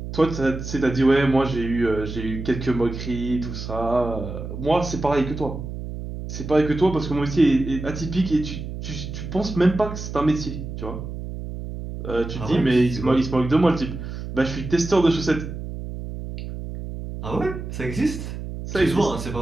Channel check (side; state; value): right; noise; hum, 8 dB below the sound